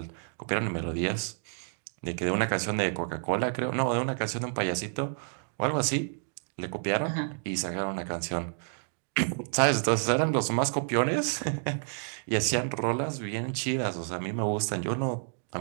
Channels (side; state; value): left; silent; digital silence